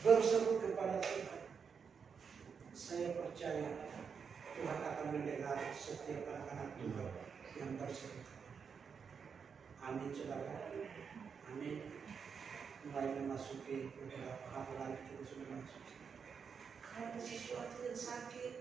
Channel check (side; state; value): left; quieter; 6.3 dB